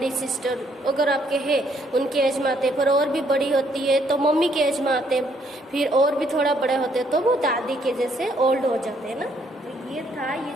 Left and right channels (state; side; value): normal; both; correlation 0.69